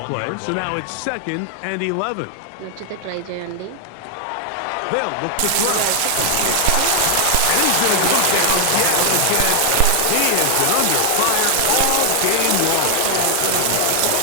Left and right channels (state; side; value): different; both; correlation 0.00